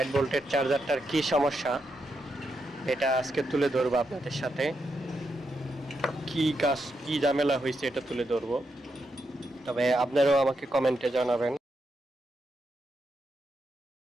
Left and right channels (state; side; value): normal; both; correlation 0.83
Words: ভোল্টের চার্জারটার কি সমস্যা এটা আজকে তুলে ধরবো আপনাদের সাথে। কি ঝামেলা হয়েছে এটা তুলে ধরবো। তবে আপনারাও আমাকে কমেন্টে জানাবেন